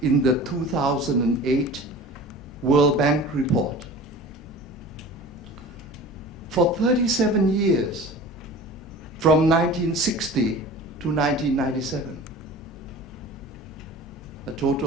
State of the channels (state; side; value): normal; both; correlation 0.39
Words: in the 2008 World Bank report. For 37 years, from 1960 to 1997, a